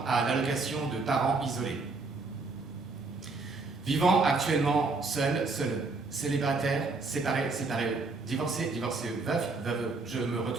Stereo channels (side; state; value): left; quieter; 3.8 dB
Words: à l'allocation de parents isolés. Vivant actuellement seul, célibataire, séparé, divorcé, veuf, veuve, je me